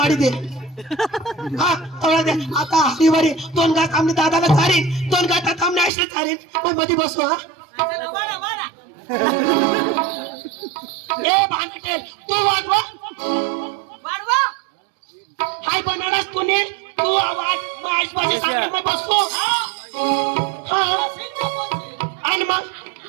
दे हा थोडा दे आता हरीवारी 2 गात आम्ही दादाला चारीन 2 गातात आम्ही आईला चारीन मग मध्ये बसू हा ए भांडटेल तू वाढवा हाय बनारस तूने तू आवाज माझ माझे सांग मैं बसू हां आणि मग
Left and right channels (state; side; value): drops out; left; at 5.9 s